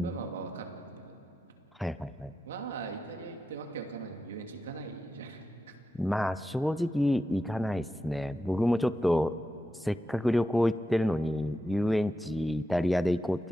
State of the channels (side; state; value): both; normal; correlation 0.90